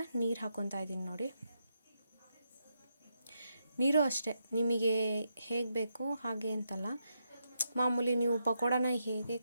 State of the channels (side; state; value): both; inverted; correlation -0.82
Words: ನೀರು ಹಾಕ್ಕೊತಾ ಇದ್ದೀನಿ. ನೋಡಿ, ನೀರು ಅಷ್ಟೇ ನಿಮಗೆ ಹೇಗೆ ಬೇಕು ಹಾಗೆ ಅಂತಲ್ಲ. ಮಾಮೂಲಿ ನೀವು ಪಕೋಡನ ಹೇಗೆ